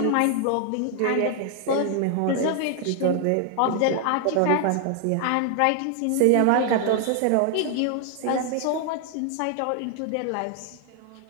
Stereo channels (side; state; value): both; different; correlation 0.00